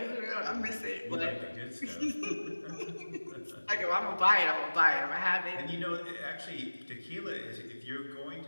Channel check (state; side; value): inverted; both; correlation -1.00